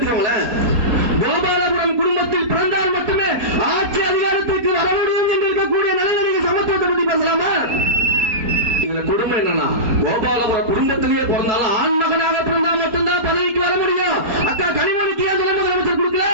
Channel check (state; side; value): late; left; 4.2 ms